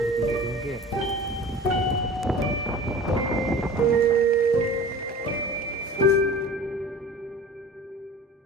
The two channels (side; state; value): both; normal; correlation 0.39